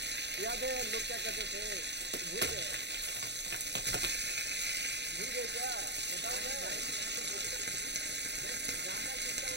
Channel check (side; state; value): left; late; 0.50 ms